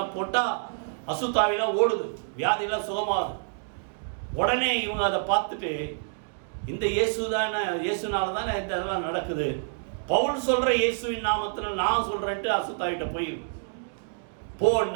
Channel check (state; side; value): silent; left; digital silence